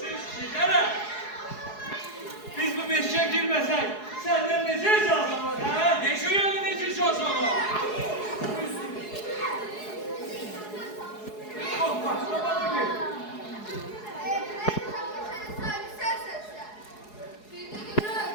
işe girmesek senden nece icazın var ha? Nece yani nece icazın var? Oh bak baba gibi.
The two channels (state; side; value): late; right; 4.7 ms